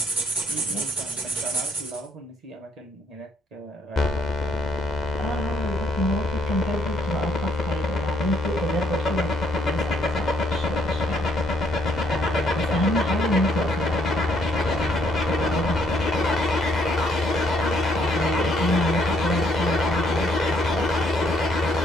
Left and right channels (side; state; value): both; normal; correlation 0.69